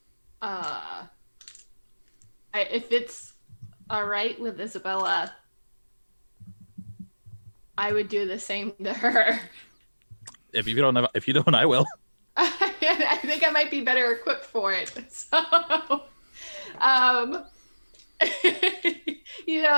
If it's all right with Isabella, I would do the same to her. If you don't, I will. I think I might be better equipped for it. So, I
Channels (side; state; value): both; inverted; correlation -1.00